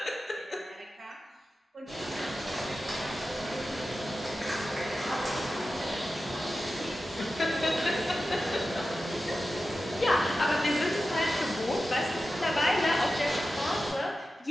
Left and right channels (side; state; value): both; normal; correlation 0.93